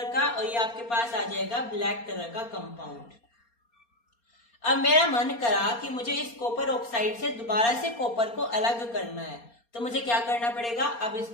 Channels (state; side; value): late; right; 4.3 ms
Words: का, और ये आपके पास आ जाएगा ब्लैक कलर का कंपाउंड। अब मेरा मन करा कि मुझे इस कॉपर ऑक्साइड से दोबारा से कॉपर को अलग करना है, तो मुझे क्या करना पड़ेगा? अब